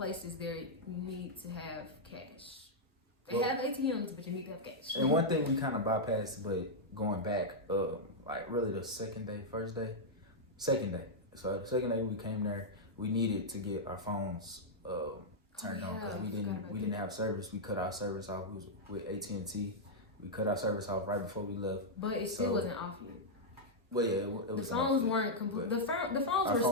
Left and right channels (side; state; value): both; normal; correlation -0.06